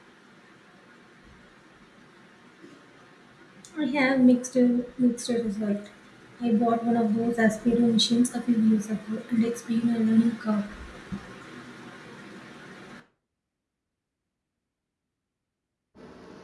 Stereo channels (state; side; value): identical; both; correlation 1.00